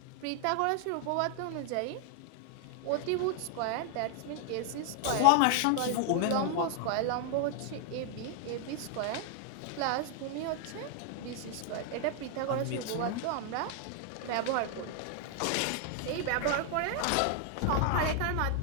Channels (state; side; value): different; both; correlation 0.00